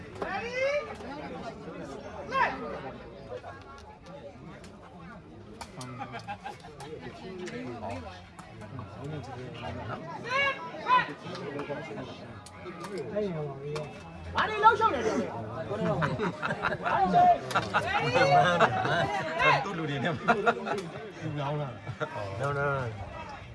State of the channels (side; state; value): both; identical; correlation 1.00